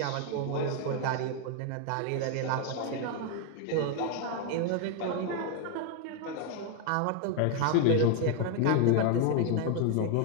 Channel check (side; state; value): both; different; correlation 0.01